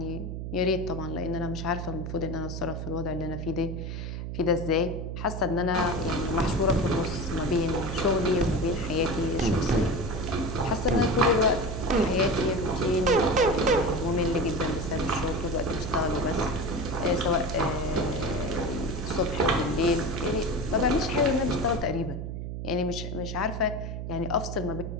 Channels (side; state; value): right; noise; hum, 6 dB below the sound